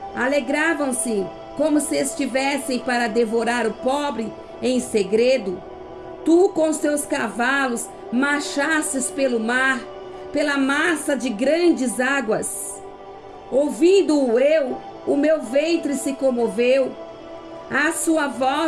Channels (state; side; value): identical; both; correlation 1.00